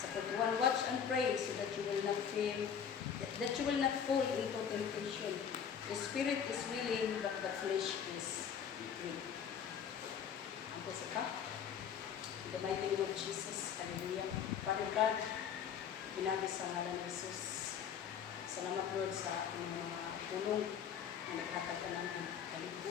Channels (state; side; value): quieter; right; 7.8 dB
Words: Sa 41, watch and pray so that you will not fail, that you will not fall into temptation. The spirit is willing, but the flesh is weak. Ang kasi ka? In the mighty name of Jesus, hallelujah. Father God, pinagi sa ngalan ni Jesus. Salamat Lord sa mga tulong na naghatag ka namin.